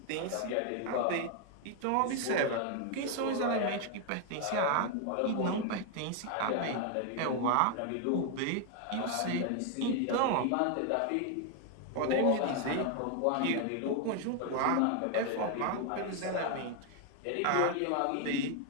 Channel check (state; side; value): different; both; correlation 0.00